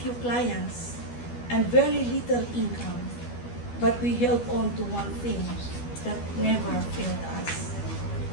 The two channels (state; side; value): late; right; 12 ms